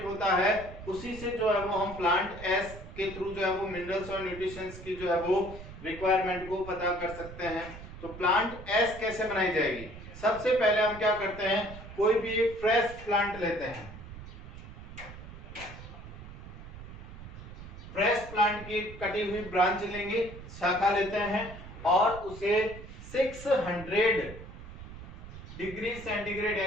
होता है उसी से जो है वो हम प्लांट एस के थ्रू जो है वो मिनरल्स और न्यूट्रिशंस की जो है वो रिक्वायरमेंट को पता कर सकते हैं। तो प्लांट एस कैसे बनाई जाएगी, सबसे पहले हम क्या करते हैं, कोई भी एक फ्रेश प्लांट लेते हैं, फ्रेश प्लांट की कटी हुई ब्रांच लेंगे, शाखा लेते हैं और उसे 600 डिग्री सेंटीग्रेड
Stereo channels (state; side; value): noise; right; rumble, 13 dB below the sound